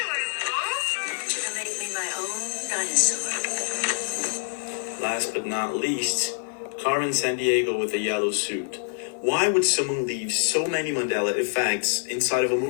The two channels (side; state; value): right; silent; digital silence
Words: Last but not least, Carmen Sandiego with a yellow suit. Why would someone leave so many Mandela effects inside of a